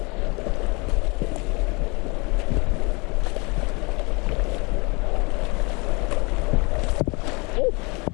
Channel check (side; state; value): right; quieter; 28.6 dB